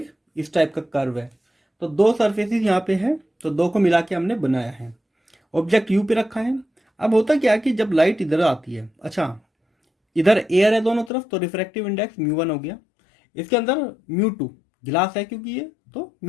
इस टाइप का कर्व है। तो दो सरफेसेस यहाँ पे है, तो दो को मिला के हमने बनाया है। ऑब्जेक्ट यू पे रखा है। अब होता क्या कि जब लाइट इधर आती है, अच्छा इधर एयर है दोनों तरफ, तो रिफ्रैक्टिव इंडेक्स μ1 हो गया। इसके अंदर μ2 गिलास है क्योंकि ये, तो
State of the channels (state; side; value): drops out; right; at 11.1 s